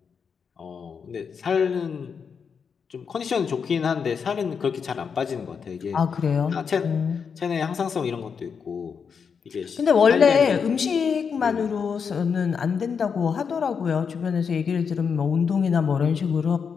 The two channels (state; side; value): quieter; right; 6.3 dB